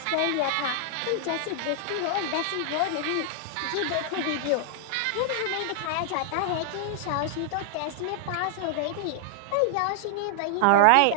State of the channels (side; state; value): both; different; correlation 0.00